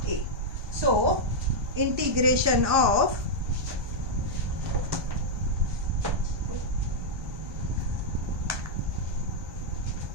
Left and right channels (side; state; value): left; late; 1.2 ms